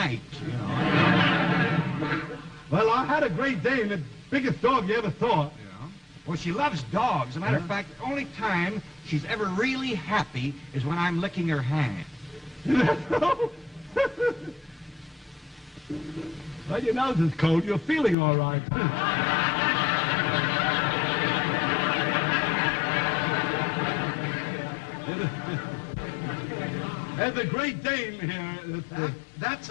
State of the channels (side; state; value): right; drops out; at 18.2 s